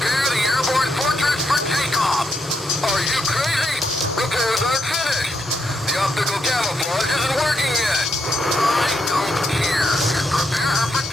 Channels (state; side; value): normal; both; correlation 0.80